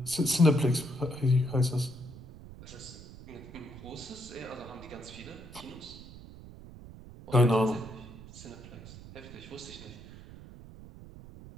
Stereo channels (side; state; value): right; noise; rumble, 16 dB below the sound